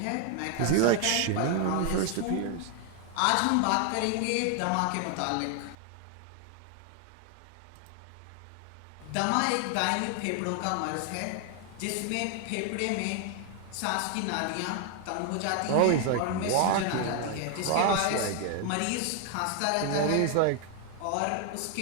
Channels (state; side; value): different; both; correlation 0.00